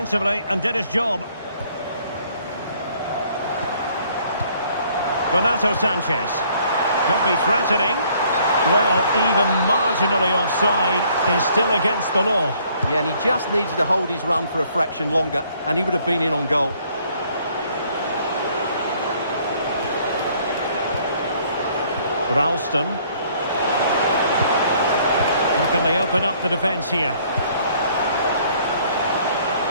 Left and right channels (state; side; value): inverted; both; correlation -0.62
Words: and did his job. Renato Sanchez. Could be threatening. Well, even marginally offside is still against the law. Yeah, and he just needed to hold his run for a fraction longer, and he would have been in on goal. Ralston. How can they open up the defence here?